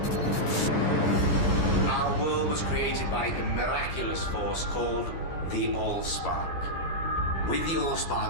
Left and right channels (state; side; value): late; right; 12 ms